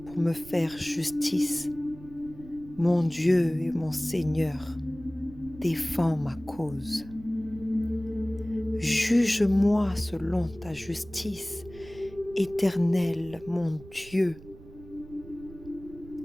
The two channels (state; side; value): noise; right; rumble, 19 dB below the sound